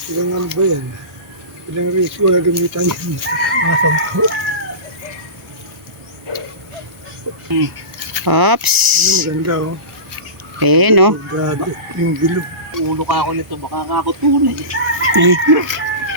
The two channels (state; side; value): late; left; 1.0 ms